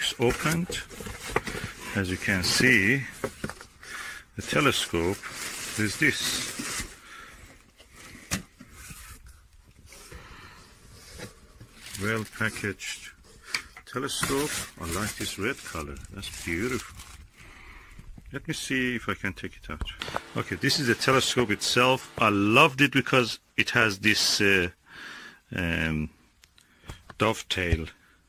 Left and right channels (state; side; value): identical; both; correlation 1.00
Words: opened. As you can see, the telescope is this. Well packaged telescope. I like this red color. That's beautiful. Let me see if I can take it out. Okay, this is the telescope itself. I loved it because it has this dovetail